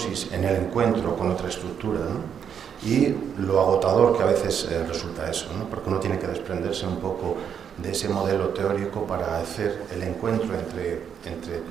en el encuentro con otra estructura, ¿no? Y lo agotador que a veces resulta eso, ¿no? Porque uno tiene que desprenderse un poco de ese modelo teórico para hacer el encuentro entre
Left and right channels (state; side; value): quieter; left; 7.9 dB